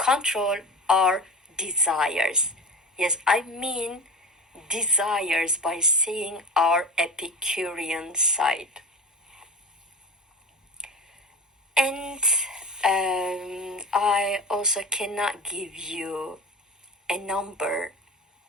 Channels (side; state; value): both; normal; correlation 0.30